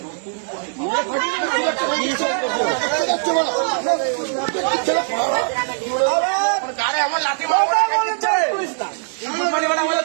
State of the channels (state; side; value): silent; left; 65 dB below the other